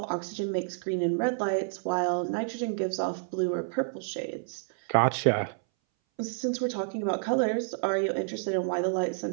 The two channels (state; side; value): silent; left; 58 dB below the other